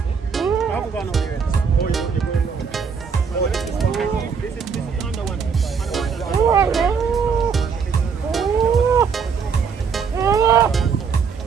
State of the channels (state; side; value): quieter; left; 6.0 dB